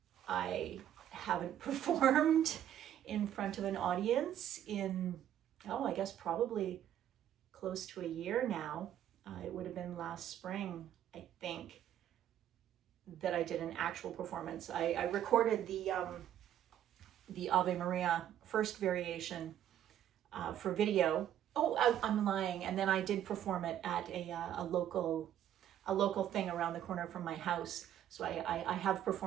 I haven't performed in front of an audience in, I guess probably close to a year now. It would have been last spring, I think, that I did an actual performance. I recorded the Ave Maria first variation for video. I'm lying. And then I did perform it at a local thing around the corner from my house. So I have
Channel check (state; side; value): quieter; left; 10.9 dB